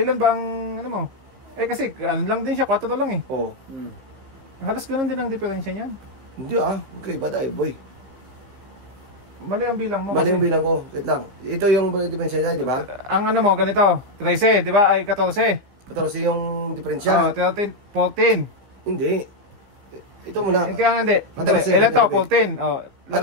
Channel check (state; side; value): late; left; 15 ms